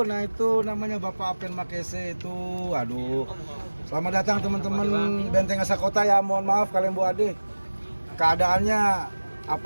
nah itu namanya Bapak Apen Makese itu. Aduh. Selamat datang teman-teman Benteng Asa Kota ya. Mohon maaf kalian Bu Ade. Keadaannya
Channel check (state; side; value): inverted; both; correlation -1.00